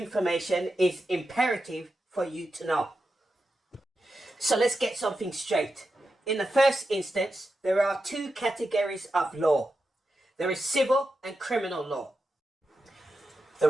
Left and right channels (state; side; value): normal; both; correlation 0.89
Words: is imperative for you to know. So let's get something straight. In the first instance, there are two categories of law. There is civil and criminal law. The